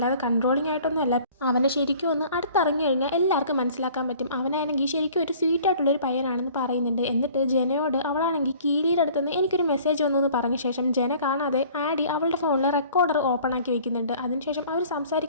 കൺട്രോളിംഗ് ആയിട്ടൊന്നുമല്ല. അവനെ ശരിക്കും ഒന്ന് അടുത്തിറങ്ങി കഴിഞ്ഞാൽ എല്ലാവർക്കും മനസ്സിലാക്കാൻ പറ്റും, അവനാണെങ്കിൽ ശരിക്കും ഒരു സ്വീറ്റ് ആയിട്ടുള്ളൊരു പയ്യനാണെന്ന് പറയുന്നുണ്ട്. എന്നിട്ട് ജനയോട് അവളാണെങ്കിൽ കീരിയുടെ അടുത്തുനിന്ന് എനിക്കൊരു മെസ്സേജ് വന്നു എന്ന് പറഞ്ഞ ശേഷം ജന കാണാതെ ആഡി അവളുടെ ഫോണിൽ റെക്കോർഡർ ഓപ്പൺ ആക്കി വെക്കുന്നുണ്ട്. അതിനുശേഷം അവർ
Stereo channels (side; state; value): both; inverted; correlation -0.50